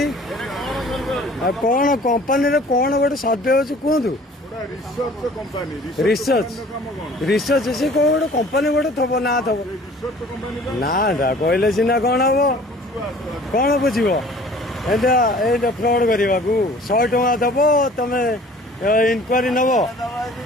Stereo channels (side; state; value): both; normal; correlation 0.49